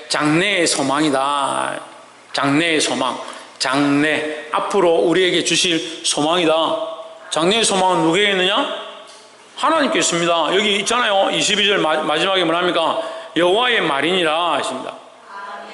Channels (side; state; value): both; identical; correlation 1.00